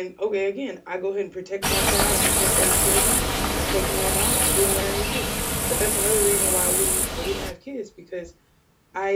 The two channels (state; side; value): identical; both; correlation 1.00